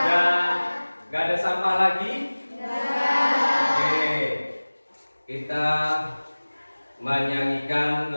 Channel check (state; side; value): inverted; both; correlation -1.00